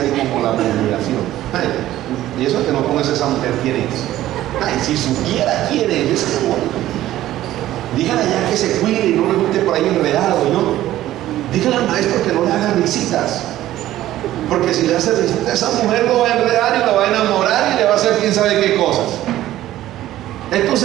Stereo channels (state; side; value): quieter; left; 14.1 dB